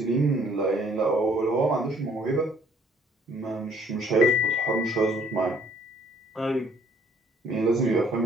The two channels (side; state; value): both; normal; correlation 0.61